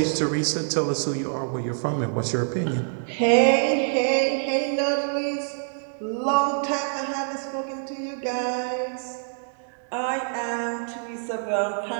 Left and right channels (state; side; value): silent; left; digital silence